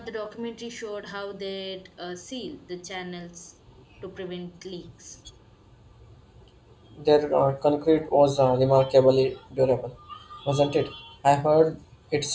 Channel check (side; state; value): both; identical; correlation 1.00